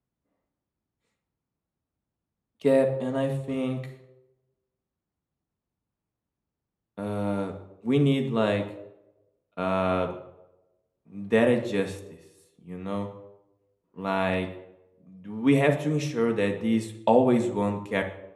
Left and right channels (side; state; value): both; identical; correlation 1.00